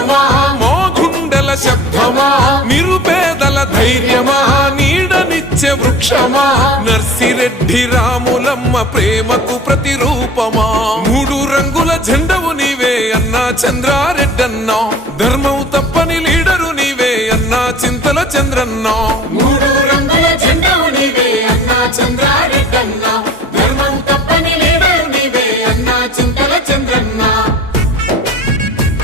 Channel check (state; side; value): normal; both; correlation 0.41